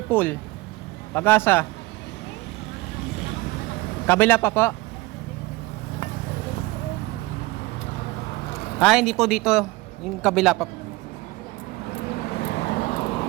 Pool Pag-asa. Kabila pa po. Hindi po dito. Yung kabila pa po.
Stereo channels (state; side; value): quieter; left; 21.0 dB